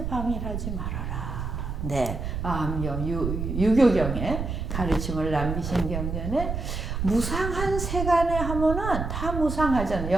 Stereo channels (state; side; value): noise; right; rumble, 4 dB below the sound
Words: 방일하지 말아라. 네, 암경, 유교경에 가르침을 남기신 경전에 무상한 세간에 하면은 다 무상하잖아요.